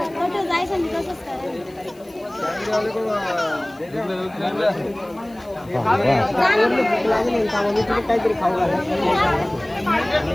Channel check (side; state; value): left; noise; hiss, 28 dB below the sound